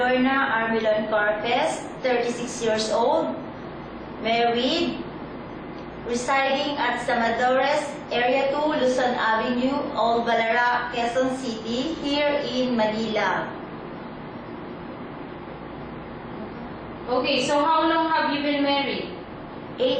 Armilon Corpes, 36 years old, married, residing at Samadores, Area 2, Luzon Avenue, Old Balara, Quezon City, here in Manila. Okay, so how long have you been married?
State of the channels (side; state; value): both; identical; correlation 1.00